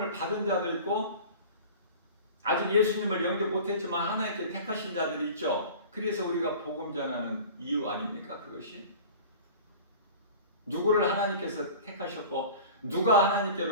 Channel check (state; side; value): inverted; both; correlation -0.39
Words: 받은 자도 있고 아직 예수님을 영접 못했지만 하나님께 택하신 자들이 있죠. 그래서 우리가 복음 전하는 이유 아닙니까? 그것이 누구를 하나님께서 택하셨고 누가